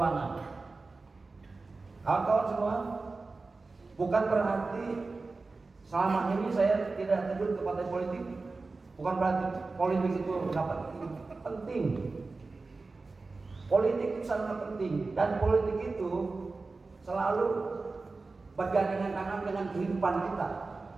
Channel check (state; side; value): quieter; left; 3.8 dB